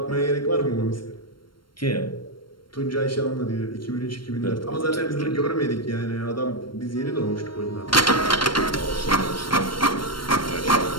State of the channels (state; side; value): late; right; 0.72 ms